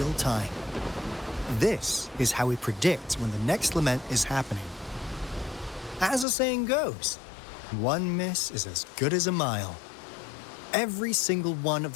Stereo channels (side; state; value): right; drops out; at 6.2 s